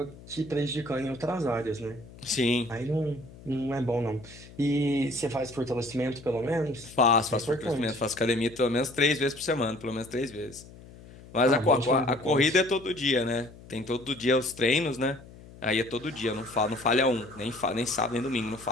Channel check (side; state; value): left; noise; hum, 19 dB below the sound